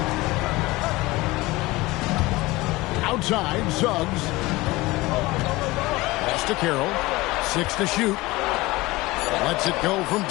Outside, Suggs. Pass to Carroll. 6 to shoot. Lets it go from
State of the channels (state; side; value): quieter; right; 20.7 dB